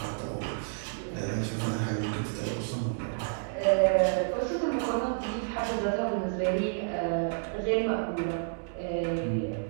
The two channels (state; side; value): silent; left; digital silence